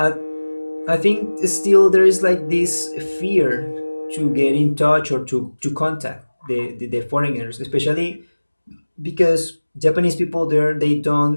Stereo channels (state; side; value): inverted; both; correlation -1.00